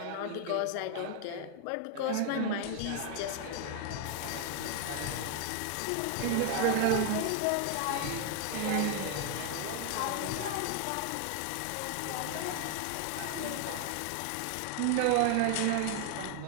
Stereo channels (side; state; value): both; different; correlation 0.00